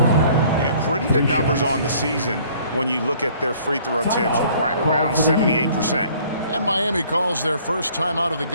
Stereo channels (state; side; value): inverted; both; correlation -0.56